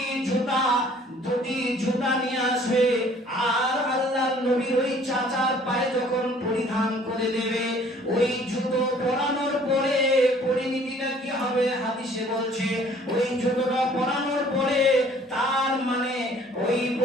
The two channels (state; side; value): normal; both; correlation 0.55